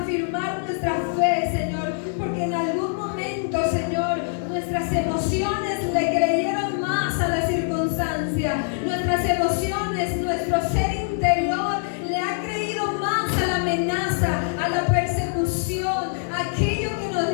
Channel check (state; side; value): silent; right; digital silence